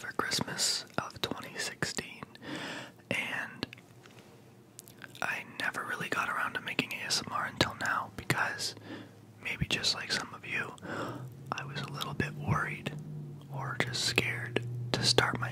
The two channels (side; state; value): both; identical; correlation 1.00